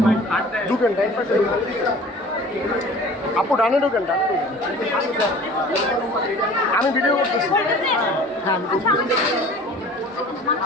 ঢুকেন ডাইন পাশে আপু ডানে ঢুকেন ডানে ঢুকেন। আমি ভিডিও করতেছি। হ্যাঁ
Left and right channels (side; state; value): both; normal; correlation 0.45